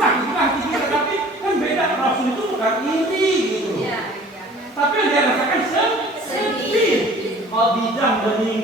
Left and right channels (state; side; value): normal; both; correlation 0.48